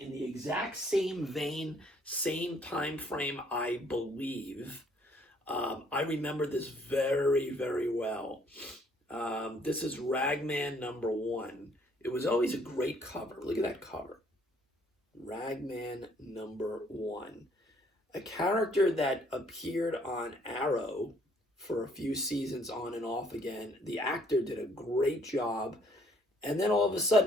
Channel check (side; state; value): both; normal; correlation 0.64